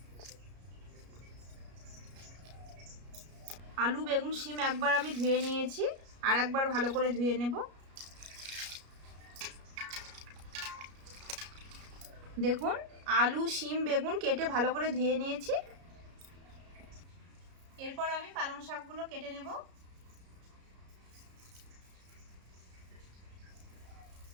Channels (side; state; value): left; late; 33 ms